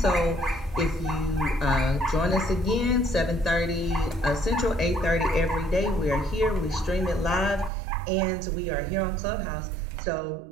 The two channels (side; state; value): left; drops out; at 7.7 s